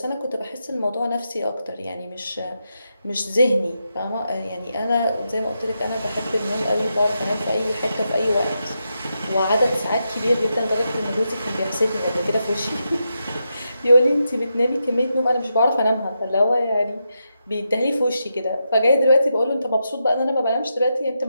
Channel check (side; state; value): both; inverted; correlation -0.85